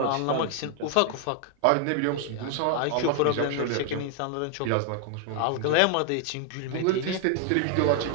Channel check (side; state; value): both; different; correlation 0.00